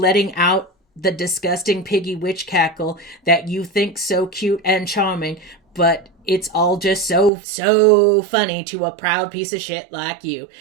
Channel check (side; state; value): left; drops out; at 7.3 s